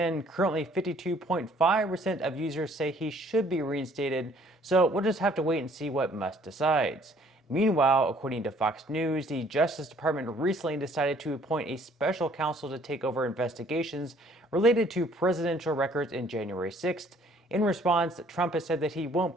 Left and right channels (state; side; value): normal; both; correlation 0.60